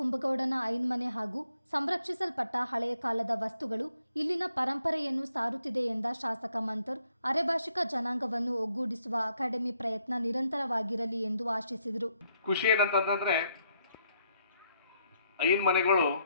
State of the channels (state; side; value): inverted; both; correlation -0.74